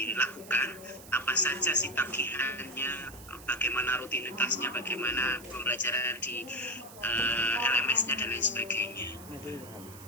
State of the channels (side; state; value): right; noise; hiss, 18 dB below the sound